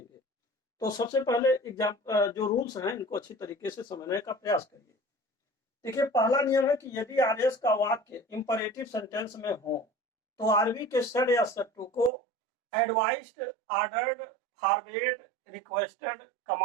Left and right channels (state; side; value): drops out; left; at 12.1 s